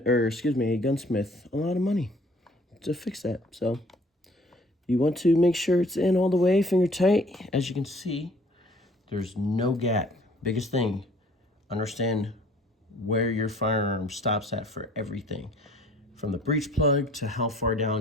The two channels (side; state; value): both; normal; correlation 0.55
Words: or excuse me, a gunsmith a lot of money to fix that. So you want to make sure it's in all the way, finger tight. As you can see, there's no gap. Biggest thing, understand where your firearm stops at for everything. From the breech plug to how far